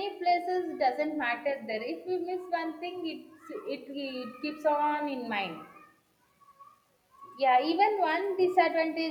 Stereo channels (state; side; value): identical; both; correlation 1.00